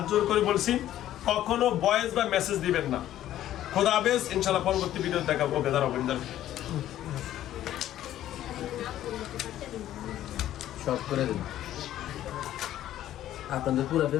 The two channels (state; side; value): quieter; right; 12.7 dB